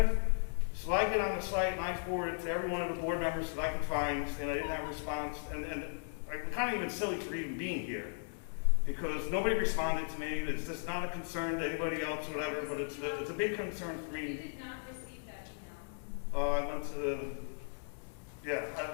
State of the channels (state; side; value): silent; right; digital silence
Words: So I get on the site and I forward it to every one of the board members that I can find, saying I didn't have a response. And I'm kind of even silly for even being here, because nobody responded to me. It's just not a concern to anybody else, whatever, but it's a big concern for me. You did not receive that email. Oh, I went to the, yeah,